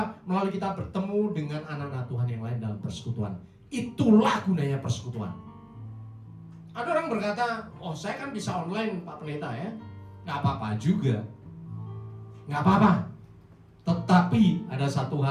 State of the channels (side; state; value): both; identical; correlation 1.00